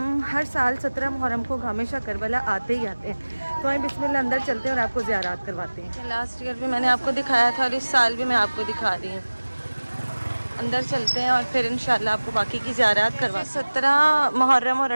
हर साल 17 मुहर्रम को गामेशा करबला आते ही आते हैं। तो हम बिस्मिल्लाह अंदर चलते हैं और आपको ज़ियारात करवाते हैं। लास्ट ईयर भी मैंने आपको दिखाया था और इस साल भी मैं आपको दिखा रही हूँ। अंदर चलते हैं और फिर इंशाल्लाह आपको बाकी की ज़ियारत करवा। 17 मुहर्रम और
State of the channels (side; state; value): both; inverted; correlation -1.00